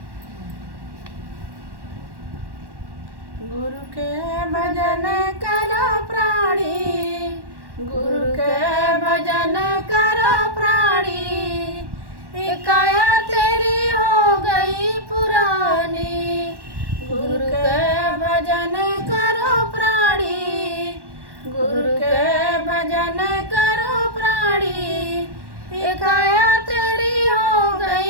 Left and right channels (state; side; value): late; left; 1.1 ms